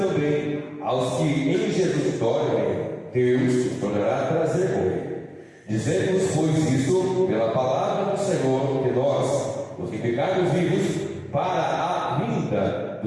aos que em Jesus dormem, Deus os tornará a trazer com ele. Dizemos, pois, isto pela palavra do Senhor, que nós, os que ficarmos vivos, para a vinda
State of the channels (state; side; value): identical; both; correlation 1.00